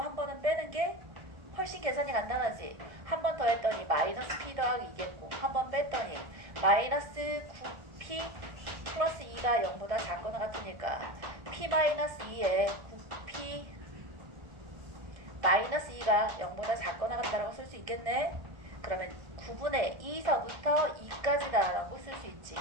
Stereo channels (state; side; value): late; left; 1.6 ms